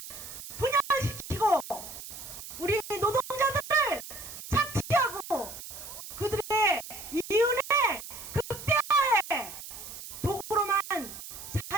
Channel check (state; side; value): noise; right; hiss, 12 dB below the sound